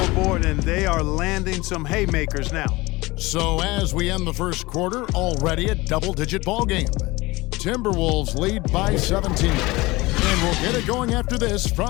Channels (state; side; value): quieter; right; 21.5 dB